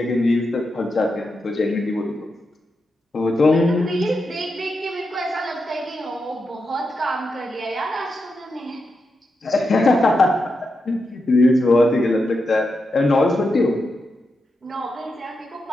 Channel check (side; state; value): both; normal; correlation 0.87